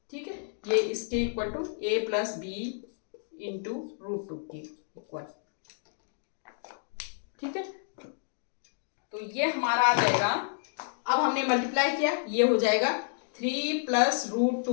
ठीक है, ये इसके equal to a plus b into √2 के इक्वल। ठीक है, तो ये हमारा आ जाएगा, अब हमने मल्टीप्लाई किया, ये हो जाएगा 3 प्लस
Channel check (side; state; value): right; silent; digital silence